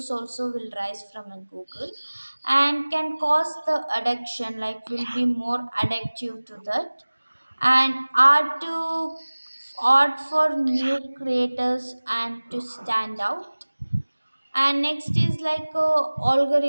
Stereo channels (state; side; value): inverted; both; correlation -1.00